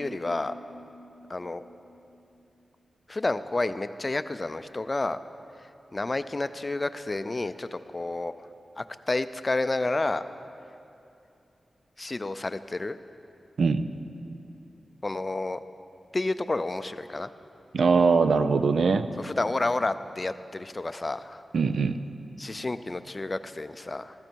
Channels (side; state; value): both; normal; correlation 0.91